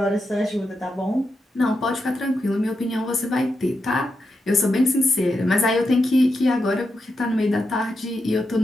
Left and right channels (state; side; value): normal; both; correlation 0.86